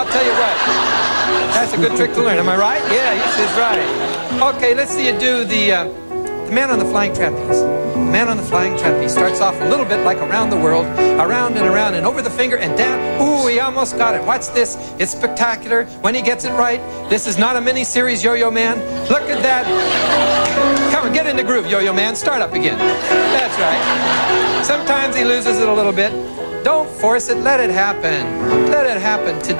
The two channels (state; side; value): inverted; both; correlation -1.00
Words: tell you what, that's a good trick to learn. Am I right? Yeah, yes, he's right. Okay, let's see you do the man on the flying trapeze. The man on the flying trapeze starts off a little bit like around the world, around and over the finger and down. Ooh, he almost got it. Watch this. It's spectacular when he gets it right. This is not a mini-series, Yo-Yo Man. Look at that. Come on, get in the groove, Yo-Yo Man. Start up again. That's right. Sometimes he loses it a little bit. Don't force it. Let it happen. Let it happen